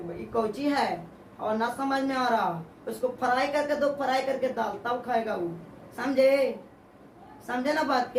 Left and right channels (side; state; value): both; identical; correlation 1.00